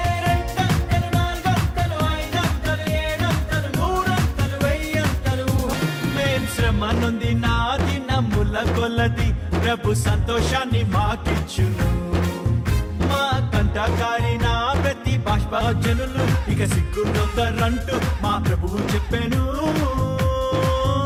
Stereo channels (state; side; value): identical; both; correlation 1.00